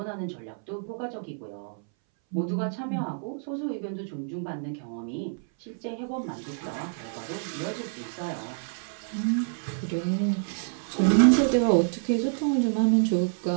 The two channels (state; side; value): silent; left; 59 dB below the other